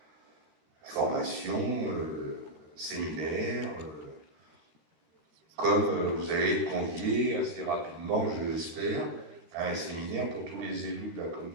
formations, séminaires, comme vous allez être conviés assez rapidement, je l'espère, à un séminaire pour tous les élus de la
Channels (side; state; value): left; late; 13 ms